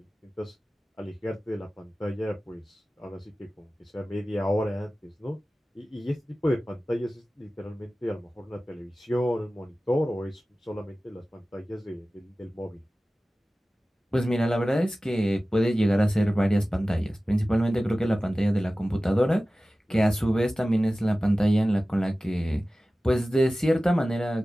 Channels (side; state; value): both; normal; correlation 0.96